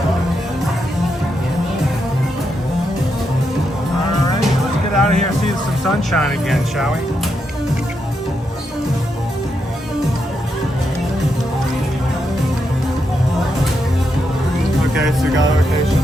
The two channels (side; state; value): both; normal; correlation 0.82